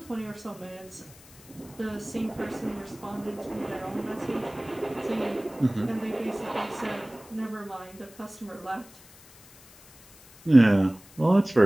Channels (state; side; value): noise; left; hiss, 23 dB below the sound